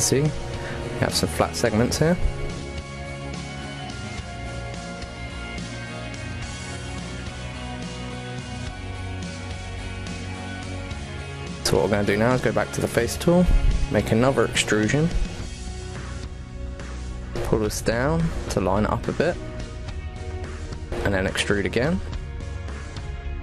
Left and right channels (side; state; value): both; identical; correlation 1.00